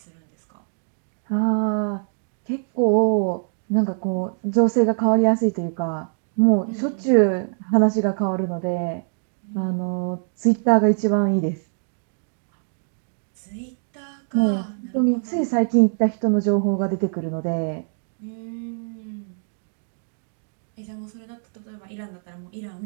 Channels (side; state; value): left; silent; digital silence